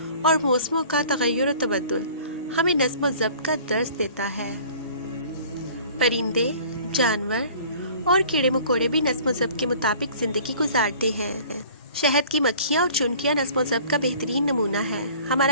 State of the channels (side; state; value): both; inverted; correlation -0.49